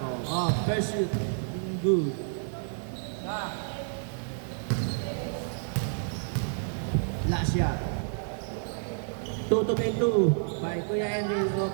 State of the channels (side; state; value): left; silent; digital silence